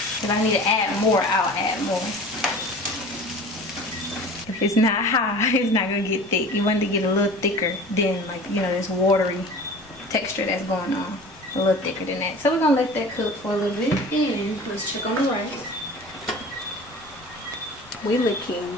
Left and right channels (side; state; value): left; noise; rumble, 26 dB below the sound